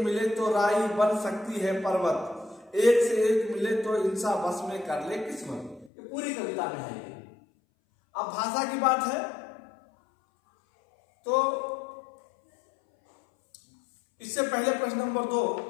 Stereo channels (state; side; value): drops out; right; at 5.9 s